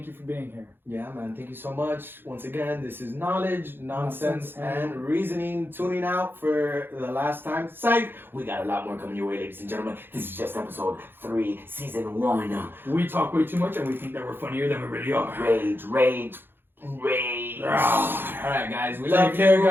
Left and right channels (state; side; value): late; left; 0.10 ms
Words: you for being here. Yeah, man. Thank you so much. Once again, this is Knowledge, Nonsense, and Reasoning tuning out for the last time. Psych! We got a lot more coming your way, ladies and gentlemen. This is just episode 3, season 1. We talk way too much and we think that we're funnier than we really are. Rage. All right, guys. We love Take care,